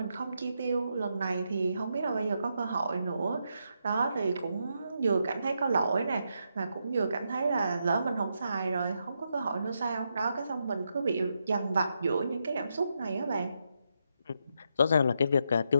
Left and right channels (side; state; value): both; inverted; correlation -0.82